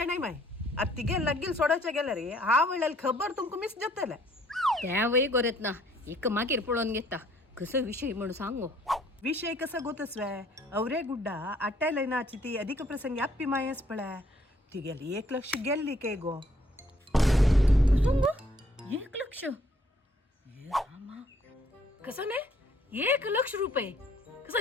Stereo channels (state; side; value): normal; both; correlation 0.64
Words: माय आता तिगे लग्गील सोडायच्या गेल्या रे हा वेळेला खबर तुमका मिस जातले त्या वय गोरेत ना एक मागीर पळोवन घेता कसं विषय म्हणून सांगो विषय कसं गोतस्वे अवरे गुड्डा अट्टाय लयनाची ती अधिक प्रसंगी अप्पी मायस पळय ती गेली 1 लाख गेल्ली के गो सांगो 1 लाख कसं नाही 1 लाख रुपये